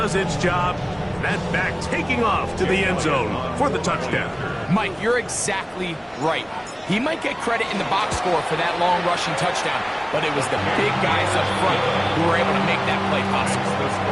its job. That back taking off to the end zone for the touchdown. Mike, you're exactly right. He might get credit in the box score for that long rushing touchdown, but it was the big guys up front who were able to make that play possible. The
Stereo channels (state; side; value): identical; both; correlation 1.00